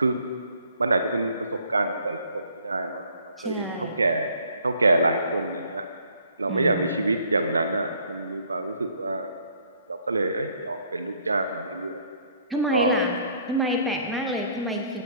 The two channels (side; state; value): both; inverted; correlation -0.61